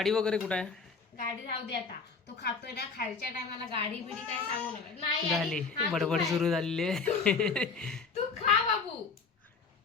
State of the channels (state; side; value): quieter; right; 4.8 dB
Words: वगैरे कुठे आहे? गाडी राहू दे आता. तो खातोय ना, खायच्या टायमाला गाडी बिडी काय सांगू नका. नाही झाली हा, तू बडबड खाय. सुरू झालेली आहे. तू खा बाबू,